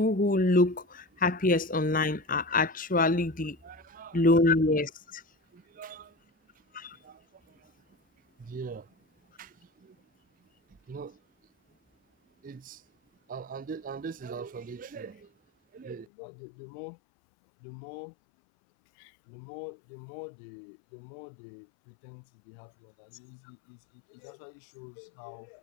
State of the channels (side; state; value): right; drops out; at 16.1 s